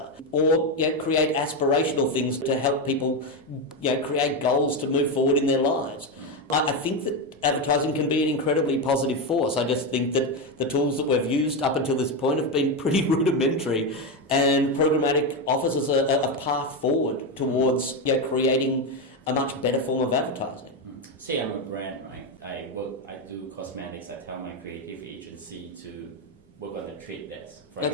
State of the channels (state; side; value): normal; both; correlation 0.11